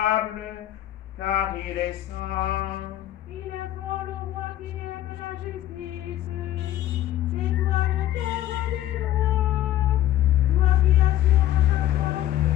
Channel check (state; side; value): quieter; right; 13.0 dB